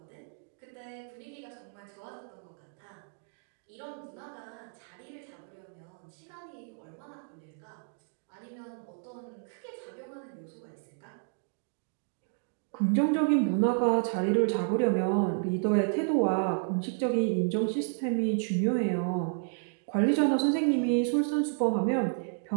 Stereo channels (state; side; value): silent; left; digital silence